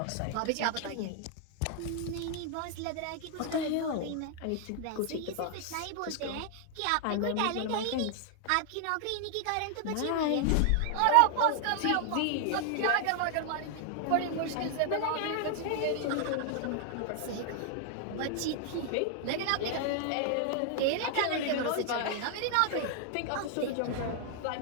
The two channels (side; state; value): both; different; correlation 0.00